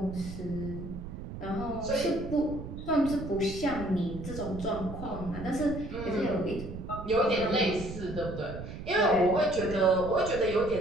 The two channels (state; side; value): noise; right; rumble, 10 dB below the sound